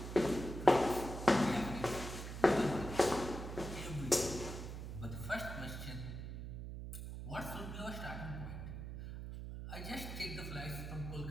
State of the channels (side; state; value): right; noise; hum, 7 dB below the sound